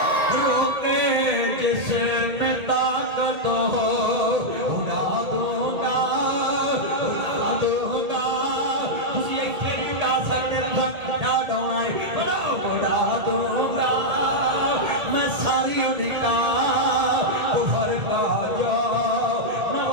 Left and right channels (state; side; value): late; left; 1.8 ms